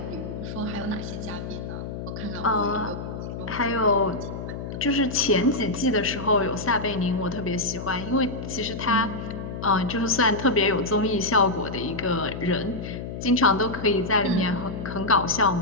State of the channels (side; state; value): left; noise; hum, 7 dB below the sound